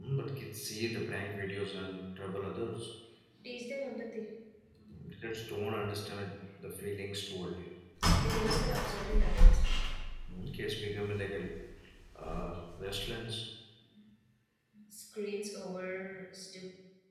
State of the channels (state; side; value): identical; both; correlation 1.00